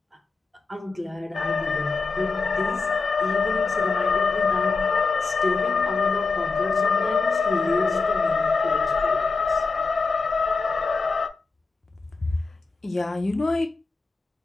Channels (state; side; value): quieter; right; 4.2 dB